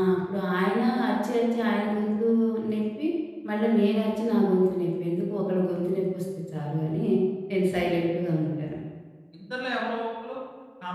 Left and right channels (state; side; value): identical; both; correlation 1.00